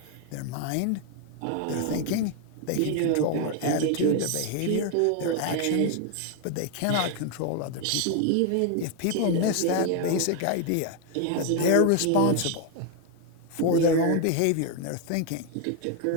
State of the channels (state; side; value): different; both; correlation 0.01